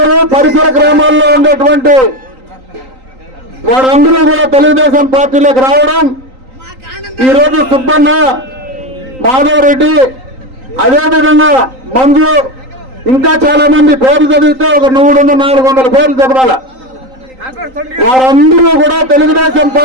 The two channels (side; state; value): left; late; 3.9 ms